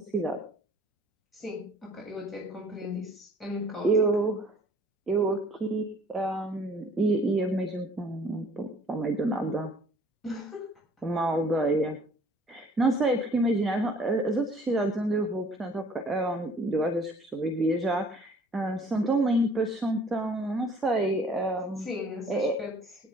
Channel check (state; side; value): normal; both; correlation 0.55